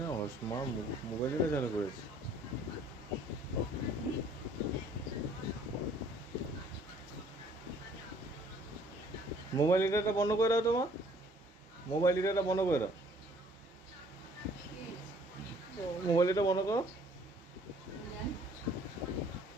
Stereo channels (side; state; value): both; normal; correlation 0.58